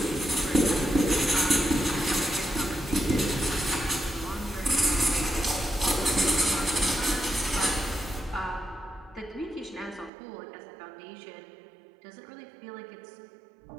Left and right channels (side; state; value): left; drops out; at 10.1 s